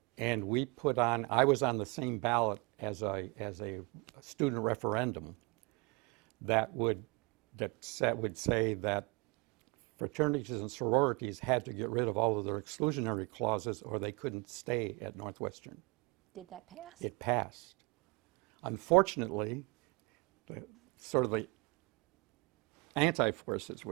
And we put on, I was on the same ballot as a student referendum that would say that fraternities and sororities had to get rid of all of their exclusionary clauses or they couldn't stay at Northwestern. Did that pass? It passed. Unfortunately, the anti-forces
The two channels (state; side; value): quieter; left; 28.2 dB